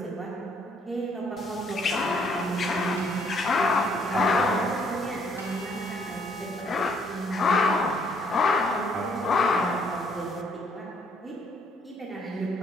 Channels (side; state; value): both; normal; correlation 0.66